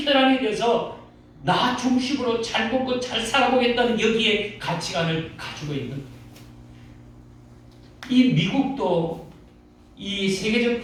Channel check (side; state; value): both; identical; correlation 1.00